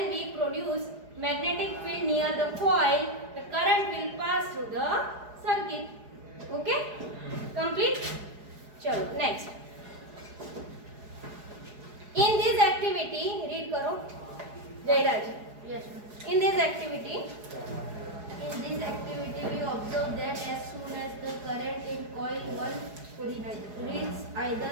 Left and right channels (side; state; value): left; late; 4.8 ms